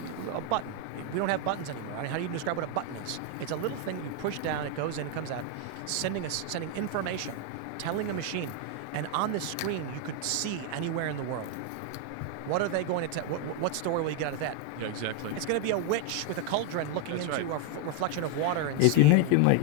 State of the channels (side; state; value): both; different; correlation 0.01